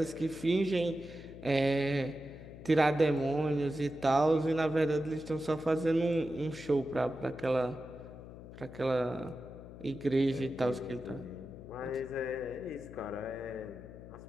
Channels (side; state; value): left; noise; hum, 15 dB below the sound